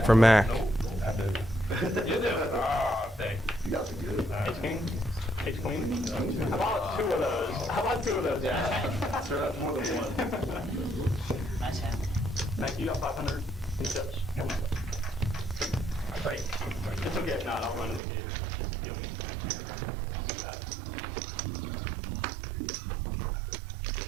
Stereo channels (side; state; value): left; drops out; at 18.0 s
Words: for Mac. You do? Thanks. Ace king? Ace queen? How about 2 of those? How about 2 of those, yeah? Sure, that's more than 1. Nice hand. Thank you, got 500 in chips. Great. It's okay if not, I'll run in the gauge. Just deal me next year. I'll do that.